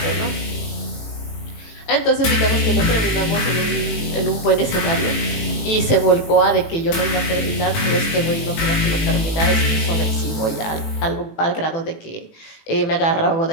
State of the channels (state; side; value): late; right; 19 ms